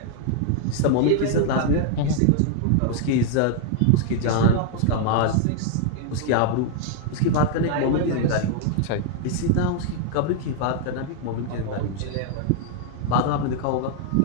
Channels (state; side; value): different; both; correlation 0.00